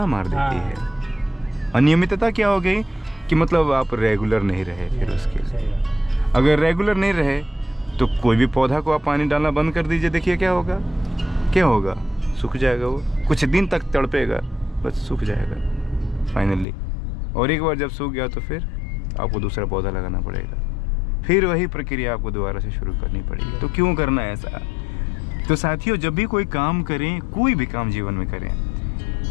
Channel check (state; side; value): drops out; right; at 16.7 s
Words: मार देती है। अनियमितता क्या हो गई कि मतलब आप रेगुलर नहीं रहे फिर उसके लिए। सही बात। अगर रेगुलर नहीं रहे तो कोई भी पौधा को आप पानी डालना बंद कर दीजिए, देखिए क्या होगा, क्या होगा, सूख जाएगा वो, कुछ दिन तक तड़पेगा, बस सूख जाएगा फाइनली। और एक बार जब सूख गया तो फिर आपको दूसरा पौधा लगाना पड़ेगा, फिर वही प्रक्रिया आपको दोबारा से शुरू करनी पड़ेगी। तो क्यों करना है ऐसा? तो साथियों, जब भी कोई काम करें, कोई भी काम जीवन में करें,